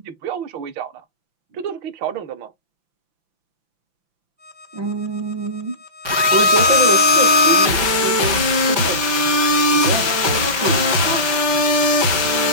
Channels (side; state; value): left; late; 5.9 ms